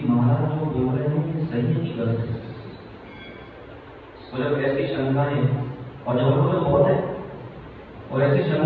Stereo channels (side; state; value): both; identical; correlation 1.00